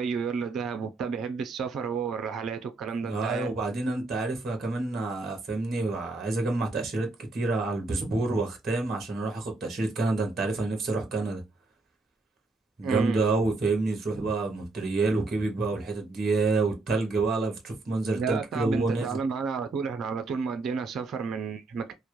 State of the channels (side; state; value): left; quieter; 3.3 dB